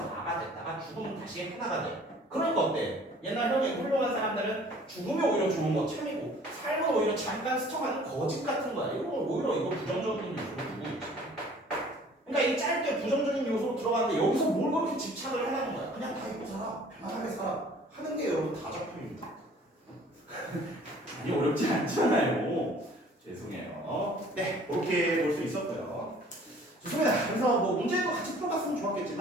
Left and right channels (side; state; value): both; normal; correlation 0.52